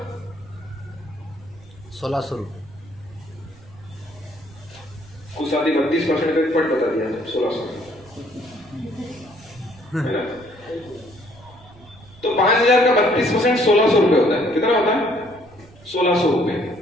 1,600 रुपये। कुछ आदमी 32% का पट बता दिया, 1,600 है ना। तो 5,000 का 32% 1,600 रुपए होता है। कितना होता है? 1,600 रुपए।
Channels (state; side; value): noise; right; rumble, 24 dB below the sound